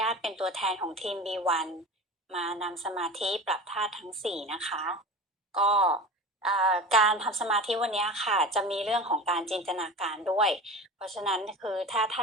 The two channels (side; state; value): both; normal; correlation 0.33